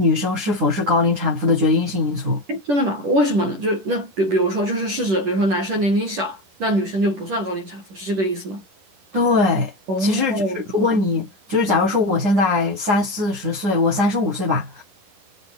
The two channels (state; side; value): late; left; 10 ms